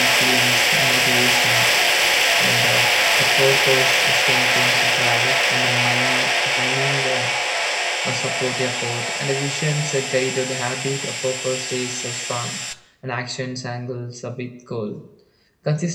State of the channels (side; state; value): both; identical; correlation 1.00